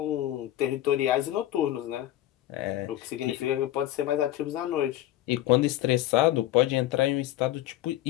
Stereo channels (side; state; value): right; quieter; 14.0 dB